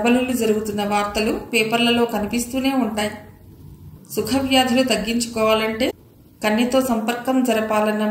జరుగుతున్న వార్తలు పేపర్లలో కనిపిస్తూనే ఉంటాయి. సుఖవ్యాధులు తగ్గించుకోవాలంటే కన్నెతో సంపర్కం జరపాలన్న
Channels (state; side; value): identical; both; correlation 1.00